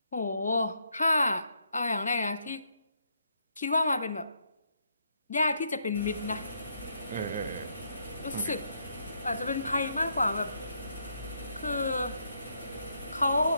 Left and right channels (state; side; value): inverted; both; correlation -0.75